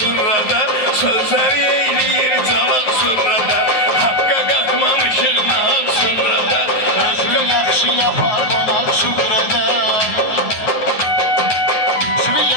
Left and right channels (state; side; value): late; right; 9.5 ms